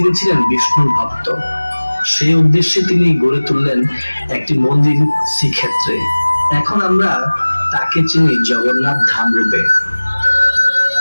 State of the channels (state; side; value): inverted; both; correlation -1.00